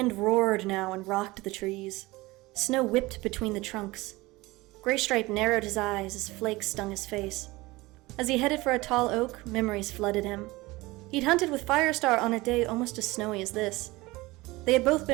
roared now and rocked the trees. Snow whipped between the trunks. Graystripe narrowed his eyes as flakes stung his face. As he headed for a tall oak, memories flooded him. He'd hunted with Firestar on a day almost as snowy as this. They had both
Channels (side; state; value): left; quieter; 21.0 dB